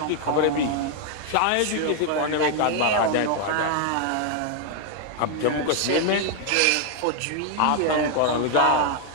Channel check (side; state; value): both; different; correlation 0.00